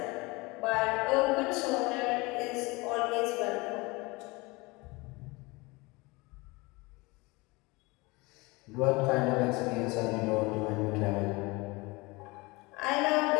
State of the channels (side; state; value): right; quieter; 24.5 dB